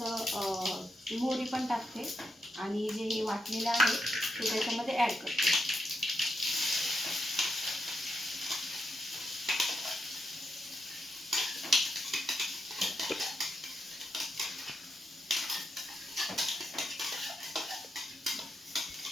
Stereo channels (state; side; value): normal; both; correlation 0.84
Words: मोहरी पण टाकते आणि जे हे वाटलेलं आहे ते त्याच्यामध्ये ॲड करते.